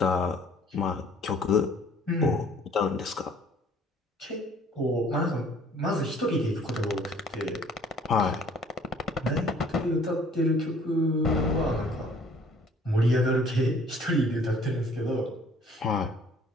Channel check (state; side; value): normal; both; correlation 0.56